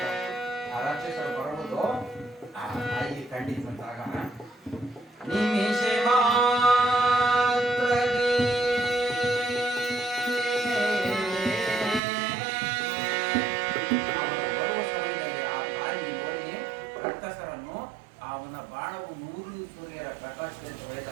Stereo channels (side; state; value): left; drops out; at 12.0 s